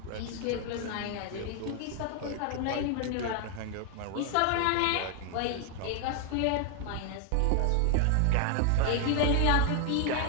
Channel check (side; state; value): both; different; correlation 0.00